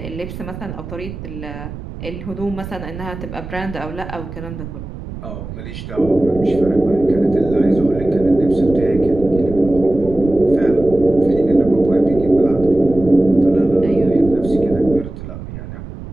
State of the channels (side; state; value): right; noise; rumble, 11 dB below the sound